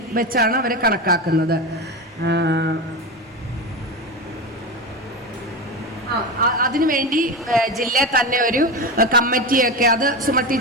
വെച്ചാണ് അവരെ കണക്കാക്കുന്നത്. അതിനുവേണ്ടി ജില്ലയിൽ തന്നെ ഒരു കമ്മിറ്റിയൊക്കെ, അത് സുമ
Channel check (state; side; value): normal; both; correlation 0.20